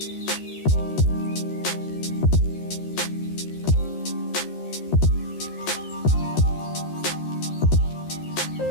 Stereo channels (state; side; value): late; right; 13 ms